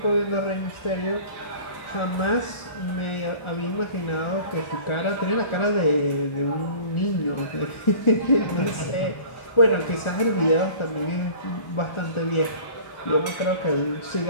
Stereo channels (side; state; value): right; late; 1.4 ms